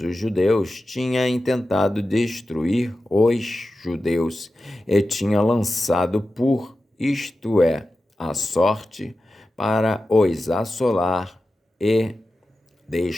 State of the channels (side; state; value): both; normal; correlation 0.93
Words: os judeus, tinha intentado destruir os judeus e tinha lançado isto é, a sorte, para os assolar e